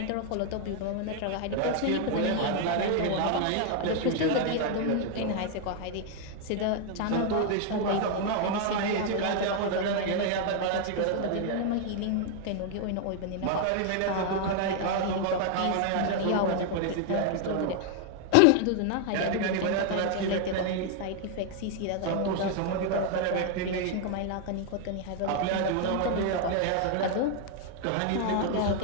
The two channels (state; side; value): different; both; correlation 0.00